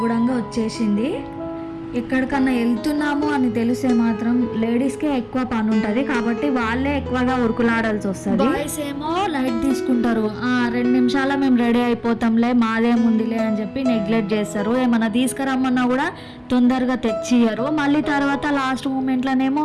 కూడా వచ్చేసింది. ఎక్కడికన్నా వెళ్తున్నాము అని తెలిసే మాత్రం లేడీస్కే ఎక్కువ పని ఉంటుంది, కాబట్టి వాళ్ళే ఎక్కువగా ఉరుకులాడాల్సి వస్తుంది. బాయ్స్ ఏమో లైట్ తీసుకుంటారు, 2 నిమిషాల మేము రెడీ అయిపోతాంలే మాదేముందిలే అని చెప్పి నెగ్లెక్ట్ చేస్తారు. ఏమన్నా తీసుకురమ్మన్నా కూడా తొందరగా తెచ్చియ్యరు. మళ్ళీ తర్వాత లాస్ట్ మూమెంట్లోనేమో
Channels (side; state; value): both; identical; correlation 1.00